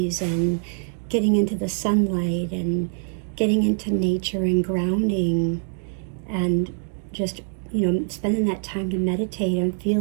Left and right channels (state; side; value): silent; left; 63 dB below the other